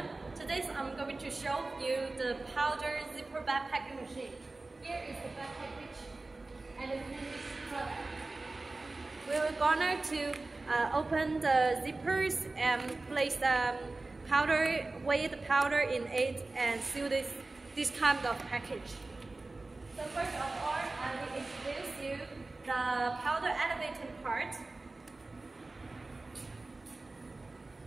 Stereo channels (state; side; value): quieter; left; 3.2 dB